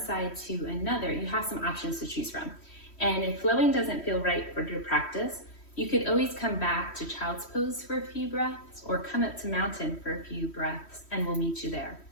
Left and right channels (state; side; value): late; right; 3.1 ms